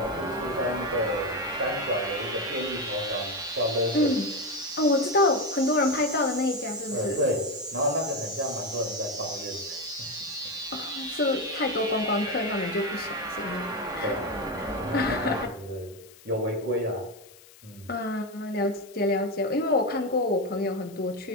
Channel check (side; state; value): left; noise; hiss, 23 dB below the sound